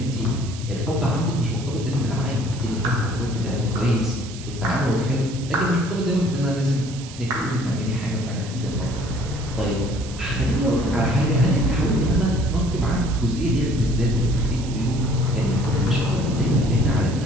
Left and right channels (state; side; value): noise; right; hiss, 15 dB below the sound